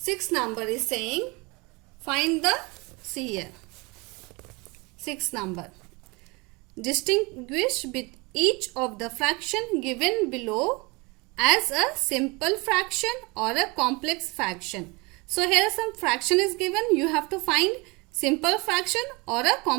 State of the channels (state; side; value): quieter; left; 26.9 dB